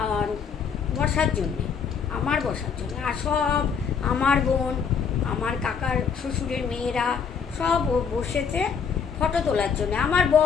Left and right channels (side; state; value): right; quieter; 6.5 dB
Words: আর বসার জন্যে, আমার বসার জন্য। আর সব আমার বোন, আমার কাকার শ্বশুরের মেয়েরা সব বসেছে ফটো তোলার জন্য। আমার